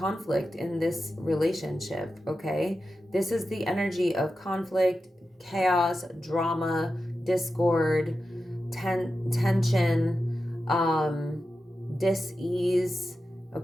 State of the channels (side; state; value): both; normal; correlation 0.91